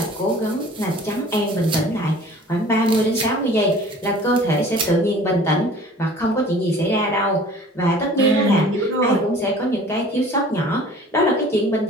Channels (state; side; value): normal; both; correlation 0.47